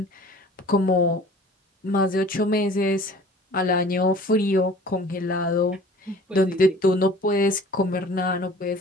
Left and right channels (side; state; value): both; normal; correlation 0.48